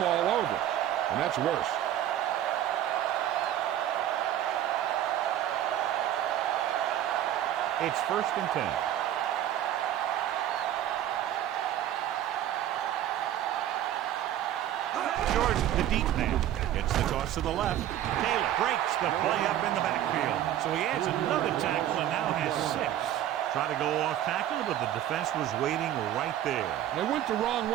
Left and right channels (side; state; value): left; quieter; 11.8 dB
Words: all over. And that's worse. It's 1st and 10. Short towards the deep man. Gets the toss to the left. Taylor breaks the play up in the backfield. So he adds another tackle and now has 6. Trying to go off tackle, but the defense was waiting right there. They went the wrong